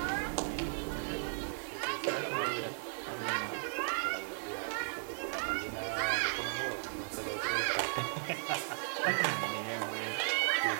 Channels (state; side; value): silent; left; digital silence